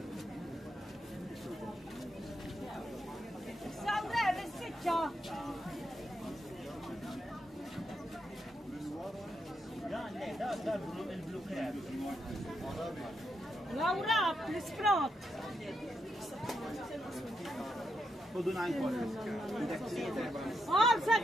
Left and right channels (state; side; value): normal; both; correlation 0.83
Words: Sawrer, is-sitxa. Laura, l-isprot. خذوا 9 كوارترز. Oh,